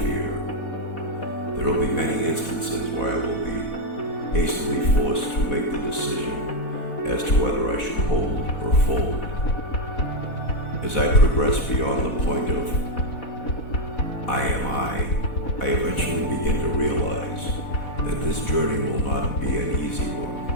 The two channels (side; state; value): right; late; 4.1 ms